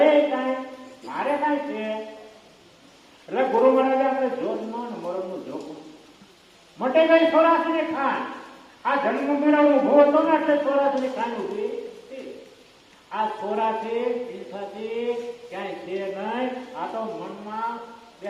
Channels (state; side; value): identical; both; correlation 1.00